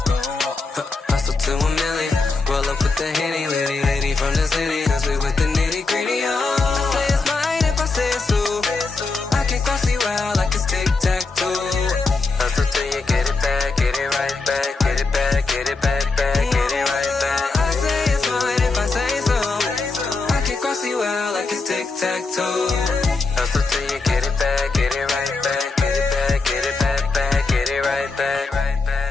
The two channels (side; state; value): right; quieter; 3.9 dB